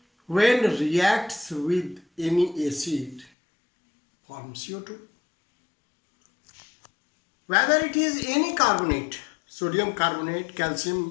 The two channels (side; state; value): right; drops out; at 3.3 s